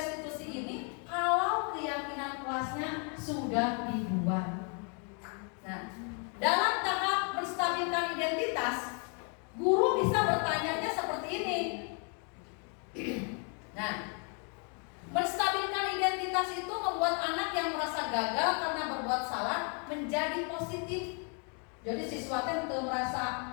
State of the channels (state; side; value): quieter; right; 38.6 dB